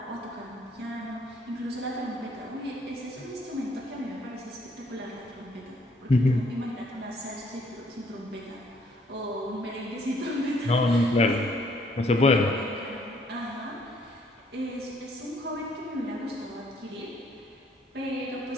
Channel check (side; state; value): both; normal; correlation 0.65